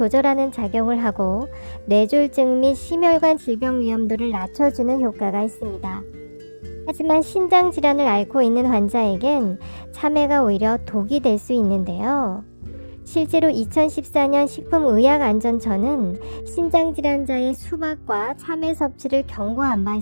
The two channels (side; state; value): both; inverted; correlation -1.00